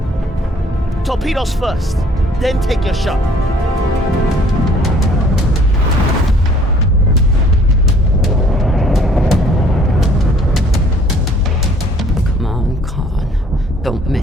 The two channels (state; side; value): normal; both; correlation 0.58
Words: Torpedoes first, then take your shot. Come on, Khan. Don't